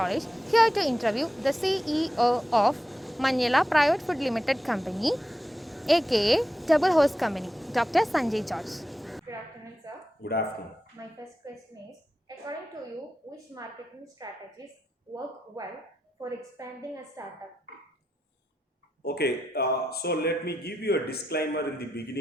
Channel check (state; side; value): normal; both; correlation 0.88